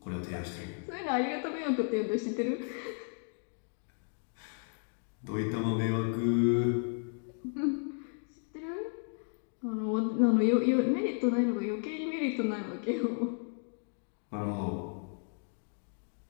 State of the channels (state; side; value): silent; right; 55 dB below the other